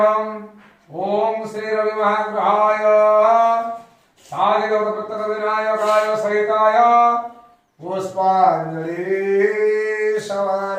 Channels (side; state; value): both; identical; correlation 1.00